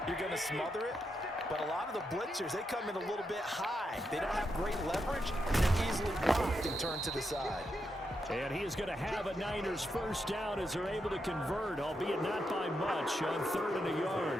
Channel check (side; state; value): both; normal; correlation 0.84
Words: you're going to smother it. But a lot of the blitzers, they come in a little bit high. They don't have great leverage, and they're easily blocked and turned to the side. And he is going to have a Niners first down as they're able to convert, albeit not by much, on 3rd and a yard.